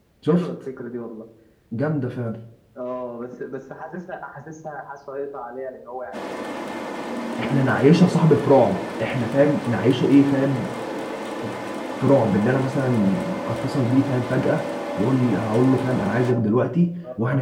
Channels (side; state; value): both; identical; correlation 1.00